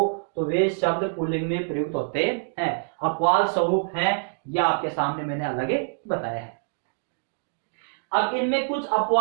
तो वे शब्द पुल्लिंग में प्रयुक्त होते हैं। अपवाद स्वरूप है, यह आपके सामने मैंने अलग बताया है। अब इनमें कुछ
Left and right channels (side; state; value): left; silent; digital silence